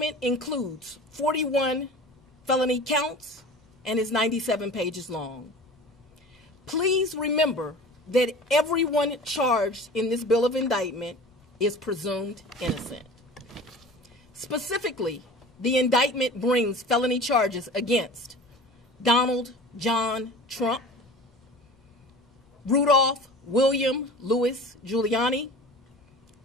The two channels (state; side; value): normal; both; correlation 0.39